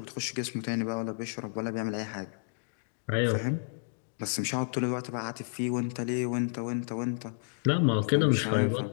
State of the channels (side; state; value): right; silent; digital silence